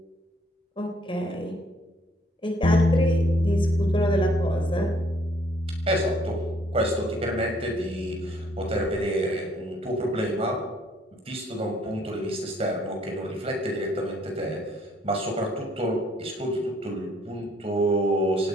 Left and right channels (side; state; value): both; normal; correlation 0.64